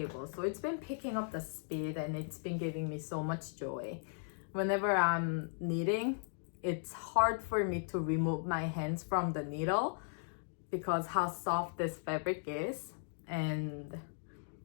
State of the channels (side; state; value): right; silent; digital silence